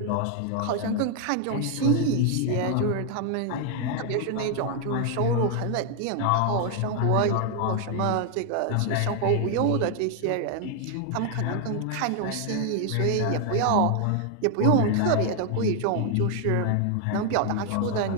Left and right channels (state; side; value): different; both; correlation 0.00